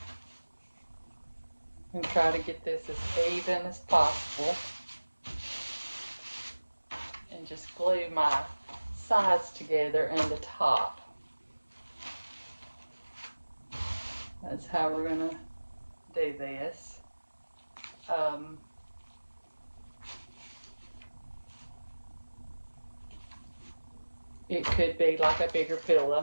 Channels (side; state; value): both; inverted; correlation -1.00